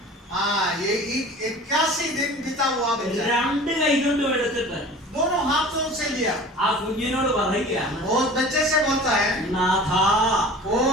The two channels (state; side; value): normal; both; correlation 0.41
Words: हाँ, ये 81 दिन बीता हुआ बच्चा രണ്ട് കൈ കൊണ്ടും എടുത്തിട്ട് दोनों हाथों से लिया। ആ കുഞ്ഞിനോട് പറയുകയാണ്, वो बच्चे से बोलता है നാഥ, ओ